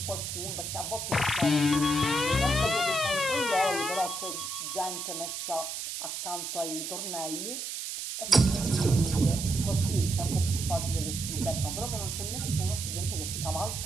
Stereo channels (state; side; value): noise; right; hiss, 5 dB below the sound